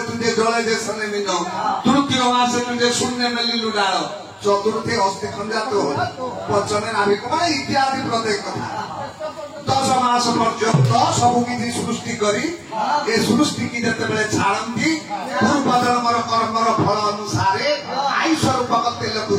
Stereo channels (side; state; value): both; identical; correlation 1.00